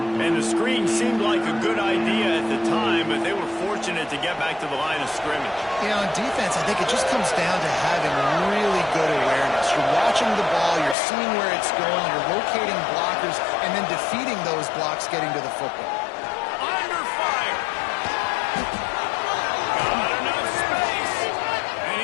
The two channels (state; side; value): drops out; right; at 11.0 s